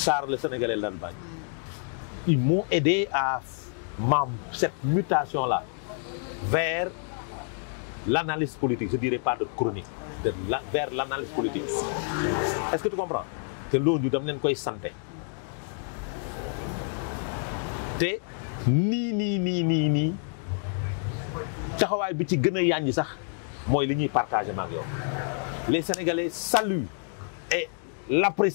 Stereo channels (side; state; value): right; silent; 55 dB below the other